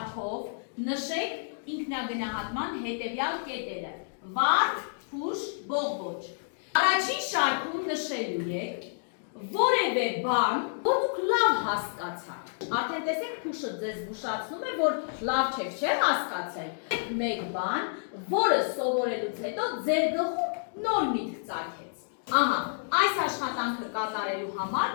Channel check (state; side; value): silent; right; digital silence